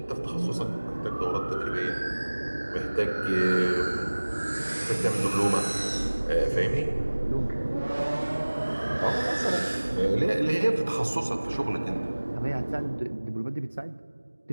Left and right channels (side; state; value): both; inverted; correlation -1.00